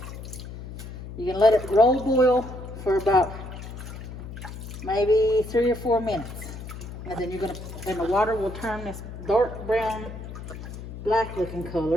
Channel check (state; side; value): noise; left; hum, 11 dB below the sound